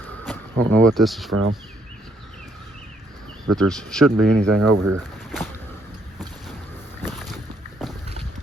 I don't know what this is from, but there shouldn't be anything over here.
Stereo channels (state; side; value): normal; both; correlation 0.71